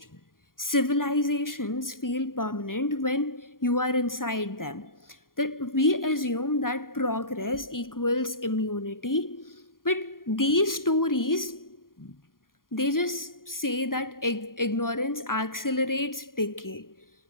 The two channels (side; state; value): right; late; 0.91 ms